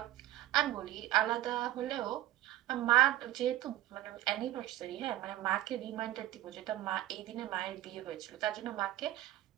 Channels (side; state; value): left; quieter; 14.5 dB